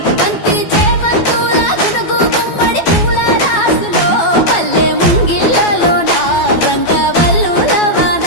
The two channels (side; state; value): right; late; 12 ms